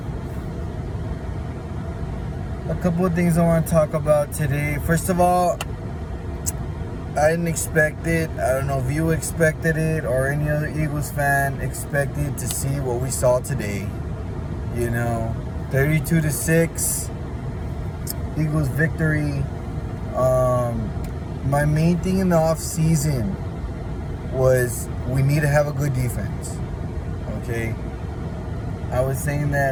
A couple of things I want to talk about today. First of all, I didn't expect it. I don't know if you expected it or any other Eagles fan expected to see what we saw today. 32-6, Eagles victory. My main thing in the off season was we need to have a good defense. Okay, I was saying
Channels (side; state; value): both; identical; correlation 1.00